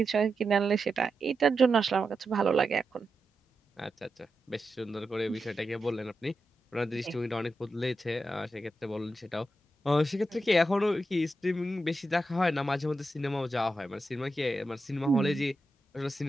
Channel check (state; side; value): normal; both; correlation 0.88